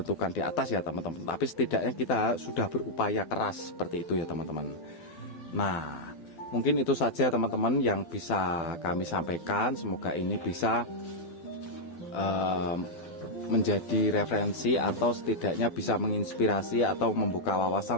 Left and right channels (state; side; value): late; right; 12 ms